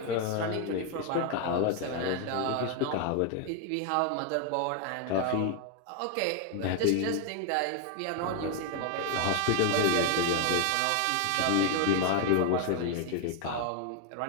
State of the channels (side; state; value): both; different; correlation 0.01